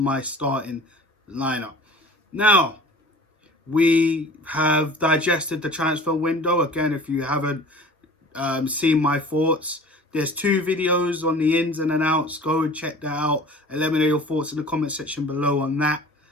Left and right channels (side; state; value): both; normal; correlation 0.44